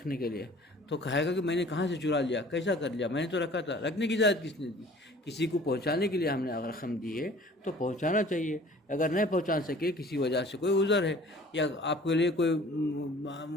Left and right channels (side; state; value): both; normal; correlation 0.49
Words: کے لیے، تو کہے گا کہ میں نے کہاں سے چرا لیا، کیسا کر لیا، میں نے تو رکھا تھا۔ رکھنے کی اجازت کس نے دی؟ کسی کو پہنچانے کے لیے ہم نے اگر رقم دی ہے تو پہنچانا چاہیے۔ اگر نہیں پہنچا سکے، کسی وجہ سے کوئی عذر ہے یا آپ کے لیے کوئی